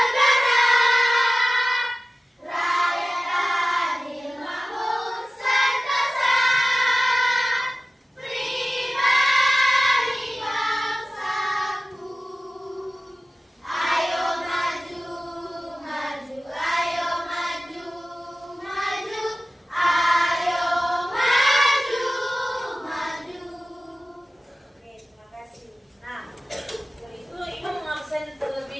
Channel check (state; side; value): normal; both; correlation 0.96